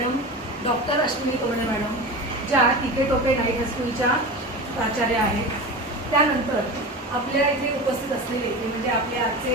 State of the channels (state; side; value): normal; both; correlation 0.28